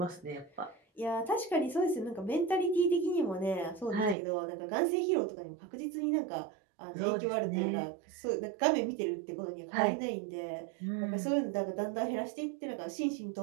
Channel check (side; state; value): left; drops out; at 4.2 s